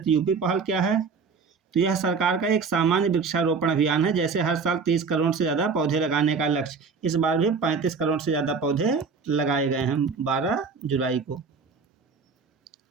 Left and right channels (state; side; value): quieter; left; 5.1 dB